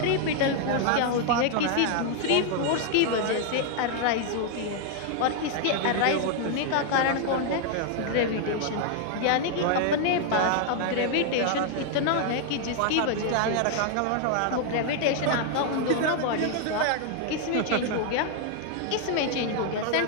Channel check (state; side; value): different; both; correlation 0.00